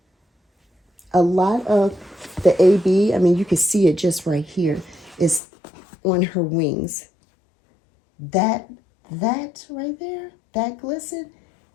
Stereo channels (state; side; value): drops out; right; at 5.4 s